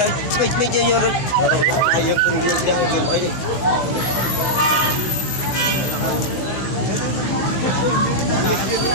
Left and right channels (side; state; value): right; late; 16 ms